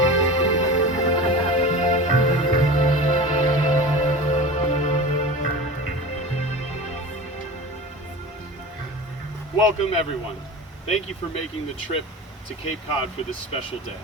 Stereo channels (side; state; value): both; normal; correlation 0.32